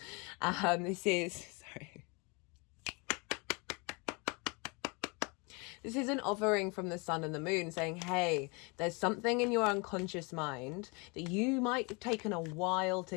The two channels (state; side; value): quieter; right; 30.3 dB